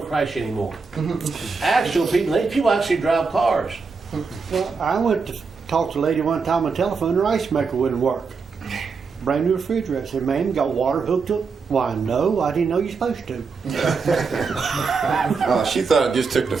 crash anymore. Actual people actually drive cars. Well, I went to talk to a lady one time on the telephone, her ice maker wouldn't work. Brand new refrigerator. I said, ma'am, you got water hooked up? Why, no, I didn't know you're supposed to. She thought it just took the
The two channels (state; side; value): quieter; left; 4.9 dB